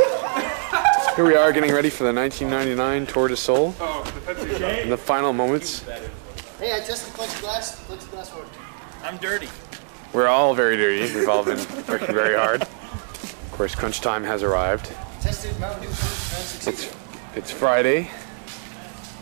Here we are getting ready for the 1999 Tour de Sol in the final moments. Hey, I tested plexiglass worked. I'm dirty. We're all very dirty. We've all been working very hard. Of course, crunch time has arrived. Tested Mountain Dew food and succeeded. It's Friday.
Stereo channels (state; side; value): silent; left; 63 dB below the other